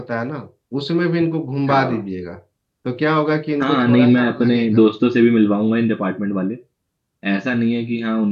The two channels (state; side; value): identical; both; correlation 1.00